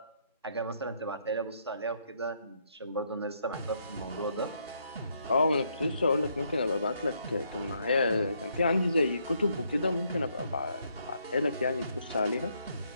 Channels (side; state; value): both; inverted; correlation -0.73